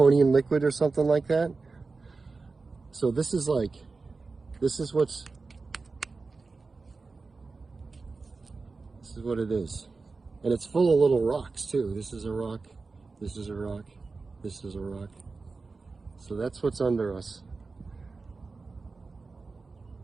liquid or something like that. So this is what, it is. And it's full of little rocks too. This is a rock, this is a rock, this is a rock. So that's what's under us.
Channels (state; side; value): quieter; left; 4.1 dB